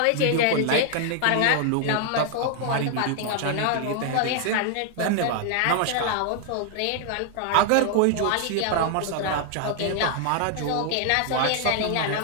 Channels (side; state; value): both; different; correlation 0.00